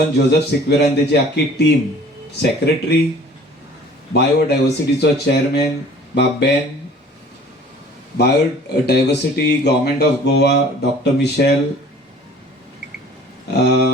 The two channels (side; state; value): both; normal; correlation 0.49